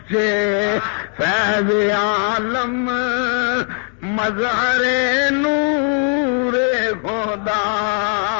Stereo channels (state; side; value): quieter; right; 39.5 dB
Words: فیض عالم مظہر نور خدا،